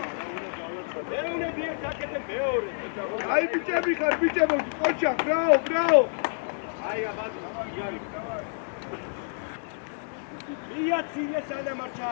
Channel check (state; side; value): silent; right; 59 dB below the other